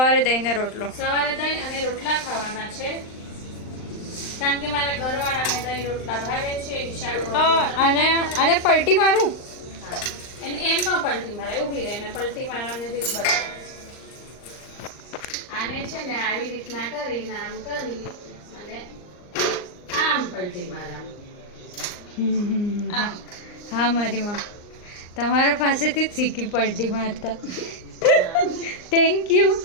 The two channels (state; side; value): late; right; 39 ms